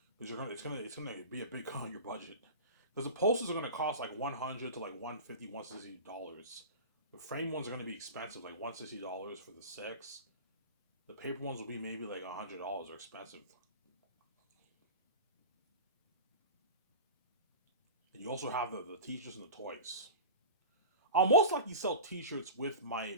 because it's gonna be a big cut on your budget. Because the posters are gonna cost like 100 to like 150, $160. The frame ones are gonna be expensive, like $160 for the six. The paper ones will be maybe like $100. They're expensive. And you also have the t-shirts and the toys. I'll most likely sell t-shirts with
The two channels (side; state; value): both; inverted; correlation -0.32